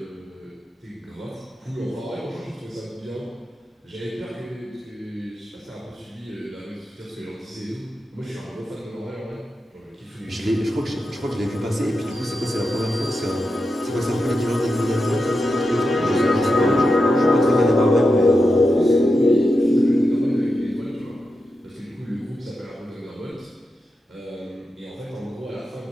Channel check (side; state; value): both; normal; correlation 0.89